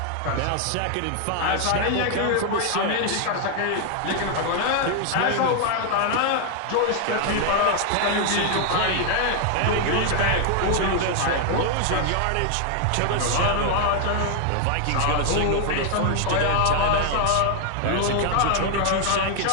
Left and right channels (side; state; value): both; different; correlation 0.00